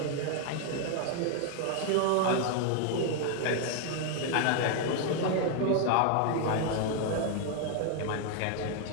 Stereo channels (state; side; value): different; both; correlation 0.00